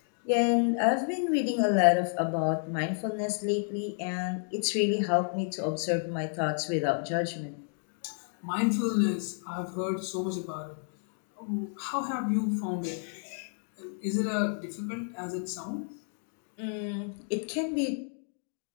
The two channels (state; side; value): silent; right; 57 dB below the other